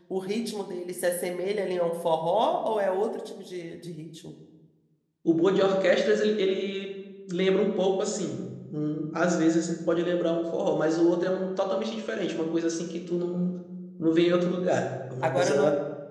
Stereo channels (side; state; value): both; identical; correlation 1.00